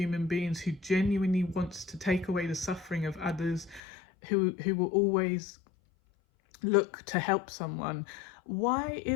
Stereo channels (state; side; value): drops out; right; at 3.8 s